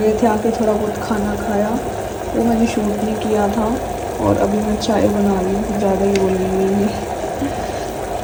थे। आके थोड़ा बहुत खाना खाया, वो मैंने शूट नहीं किया था। और अभी मैं चाय बना रही हूँ, ज़्यादा ही बोल रही हूँ।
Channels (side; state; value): both; identical; correlation 1.00